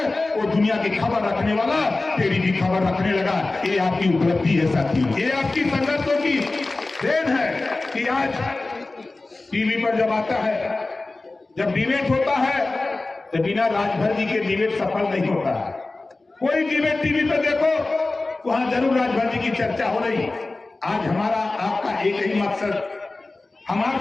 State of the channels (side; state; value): right; quieter; 3.2 dB